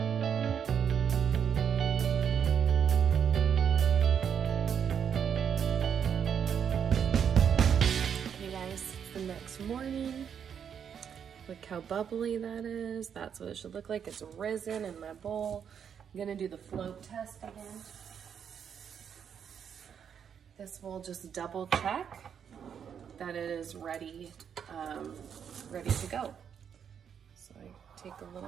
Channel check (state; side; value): quieter; left; 7.8 dB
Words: Okay guys, it's the next morning. Look how bubbly that is. That's what it should look like. It's risen in my bowl. I'm gonna do the float test again. This will just double check that it is ready, ready to go. So I take a